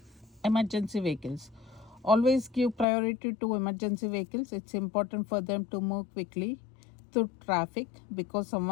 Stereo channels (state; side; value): drops out; right; at 2.9 s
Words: Emergency vehicles. Always give priority to emergency vehicles. It's important for them to move quickly through traffic because